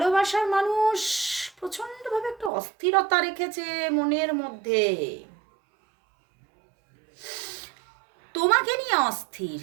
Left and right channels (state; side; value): drops out; left; at 2.5 s